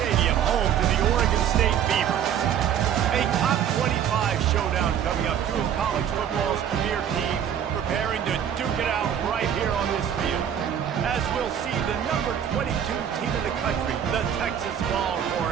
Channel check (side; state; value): left; quieter; 9.2 dB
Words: home to the Oregon State Beavers. A top 25 showdown coming up. Two of college football's premier teams preparing to duke it out right here on this field. As we'll see the number 22 team in the country, the Texas